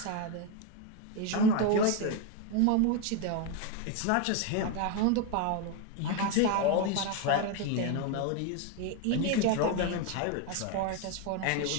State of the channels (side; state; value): both; different; correlation 0.02